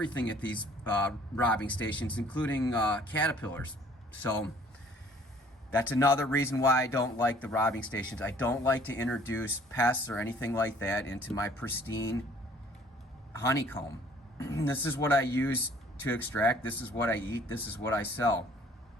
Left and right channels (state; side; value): normal; both; correlation 0.56